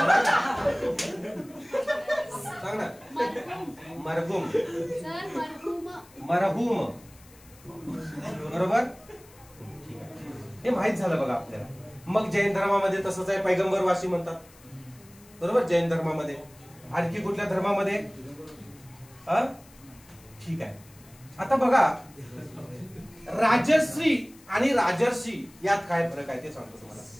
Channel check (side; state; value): left; noise; hiss, 25 dB below the sound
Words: सांग ना, मरहुम मरहुम, बरोबर. हे माहित झालं बघा आपल्याला. मग जैन धर्मामध्ये तसंच आहे, पैगंबरवासी म्हणतात, बरोबर. जैन धर्मामध्ये. आणखी कुठल्या धर्मामध्ये, ठीक आहे. आता बघा राजश्री आणि राजर्षी यात काय फरक आहे ते सांगतो तुम्हाला.